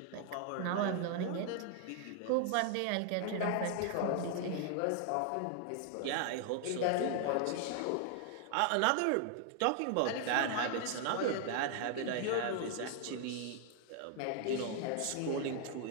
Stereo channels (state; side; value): different; both; correlation 0.00